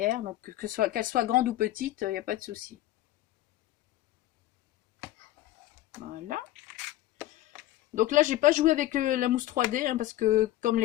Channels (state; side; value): quieter; right; 15.0 dB